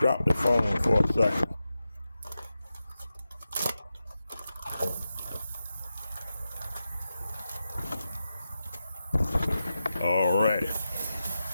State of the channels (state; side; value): inverted; both; correlation -0.90